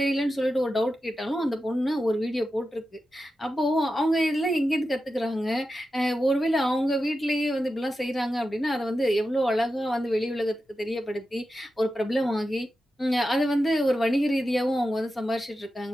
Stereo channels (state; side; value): normal; both; correlation 0.91